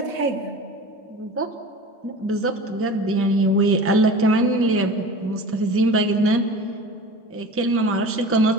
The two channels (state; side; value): normal; both; correlation 0.37